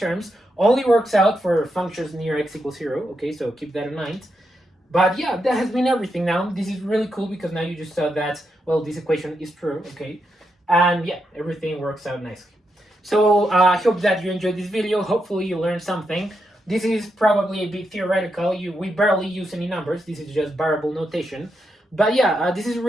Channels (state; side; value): normal; both; correlation 0.83